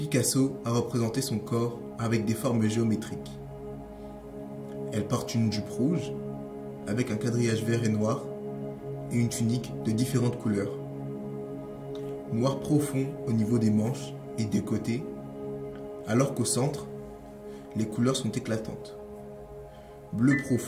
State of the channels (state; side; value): identical; both; correlation 1.00